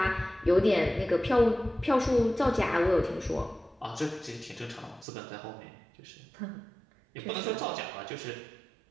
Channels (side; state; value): left; drops out; at 5.1 s